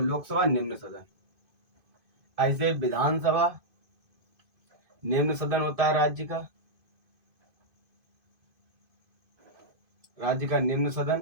लोकसभा निम्न सदन। ऐसे विधानसभा निम्न सदन होता है राज्य का निम्न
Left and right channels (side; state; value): left; late; 2.5 ms